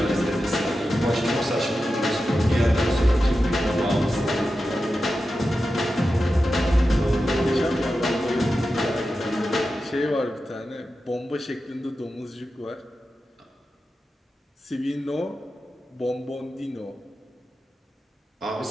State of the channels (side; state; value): both; normal; correlation 0.91